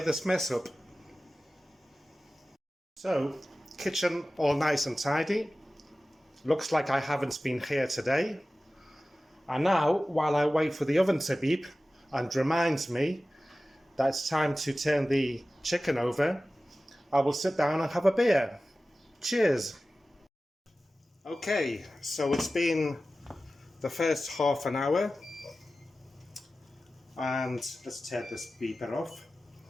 this mess up. So, kitchen all nice and tidy. Looks like I haven't been here today. And now, while I wait for the oven to beep and reminds me that it's time to turn the chicken over, I will sit down and have a beer. Cheers! Okay, so it's been the first half an hour, and let's turn this beeper off.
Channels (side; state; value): both; normal; correlation 0.96